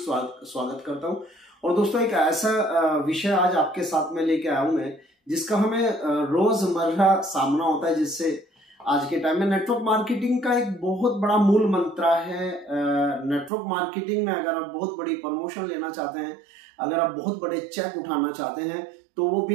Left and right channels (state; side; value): drops out; left; at 13.5 s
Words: करता हूं। और दोस्तों एक ऐसा विषय आज आपके साथ में लेके आया हूं मैं, जिसका हमें रोजमर्रा सामना होता है, जिससे आज के टाइम में नेटवर्क मार्केटिंग का एक बहुत बड़ा मूल मंत्र है। नेटवर्क मार्केटिंग में अगर आप बहुत बड़ी प्रमोशन लेना चाहते हैं, अगर आप बहुत बड़े चेक उठाना चाहते हैं, तो वो